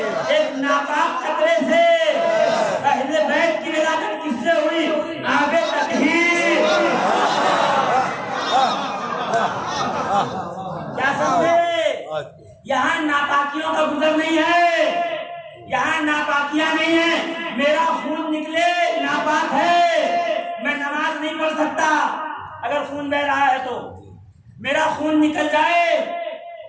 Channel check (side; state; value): both; identical; correlation 1.00